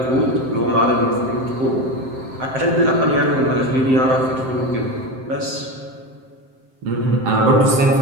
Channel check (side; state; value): left; late; 7.6 ms